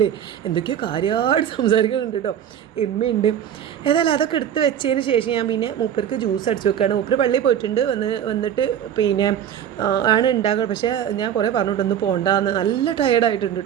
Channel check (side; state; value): left; quieter; 9.7 dB